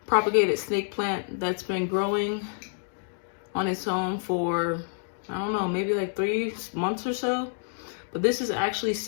propagated snake plant that's been growing on its own for, I don't know, maybe like 3 months or so. But this is actually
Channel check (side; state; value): right; silent; digital silence